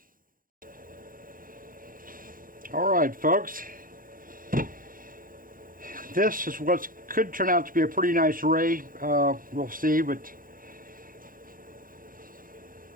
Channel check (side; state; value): left; late; 0.40 ms